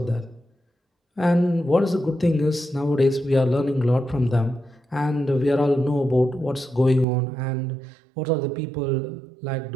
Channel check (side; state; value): left; drops out; at 7.1 s